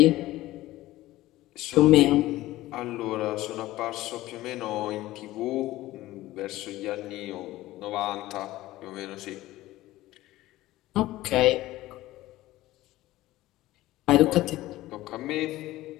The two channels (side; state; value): right; quieter; 16.6 dB